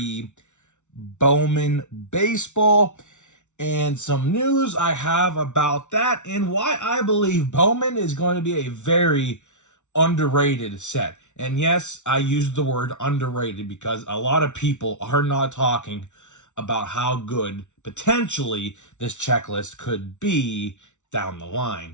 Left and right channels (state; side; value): late; right; 0.84 ms